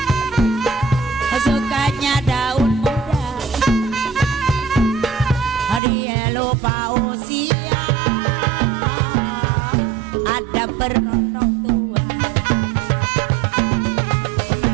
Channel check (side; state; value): left; drops out; at 5.8 s